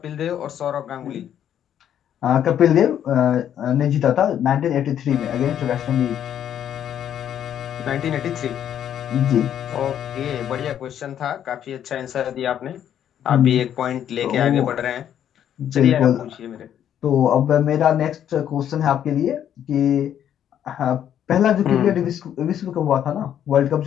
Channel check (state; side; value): quieter; right; 10.0 dB